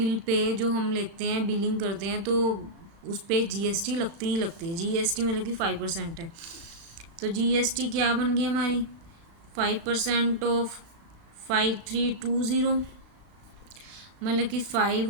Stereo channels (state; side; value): late; left; 36 ms